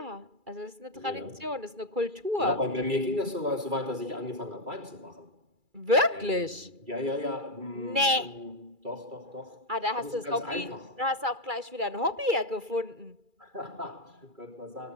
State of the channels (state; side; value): late; left; 2.3 ms